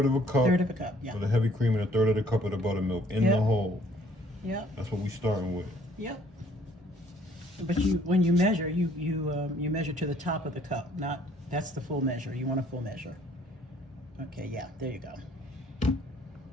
of a cup. 1/3 of a cup, yeah. For the heavy cream and 1/3 of the cup of the buttermilk in the hole. Yep. That's what we're starting with. Yep. But when you measure, you measure to the top of the cup. That's the full measure. You want a full measure. Okay, yeah, there you go.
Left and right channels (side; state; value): both; normal; correlation 0.60